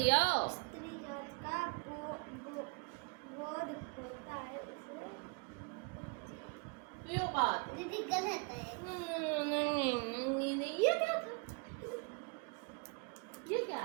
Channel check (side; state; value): left; quieter; 32.5 dB